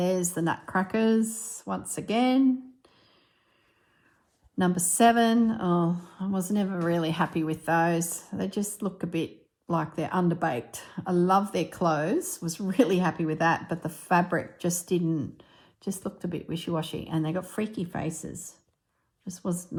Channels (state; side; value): identical; both; correlation 1.00